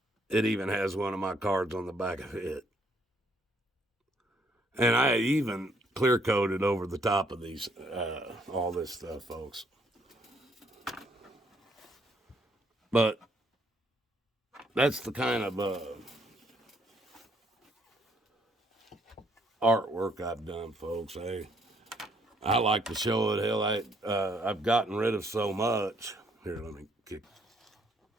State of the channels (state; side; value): normal; both; correlation 0.68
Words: has one of my cards on the back of it. And I even clear coated over the top of these, all this stuff, folks. But that's the kind of artwork I've done, folks. I like to show it. Hell, I've gotten rid of so much. Here, let me kick.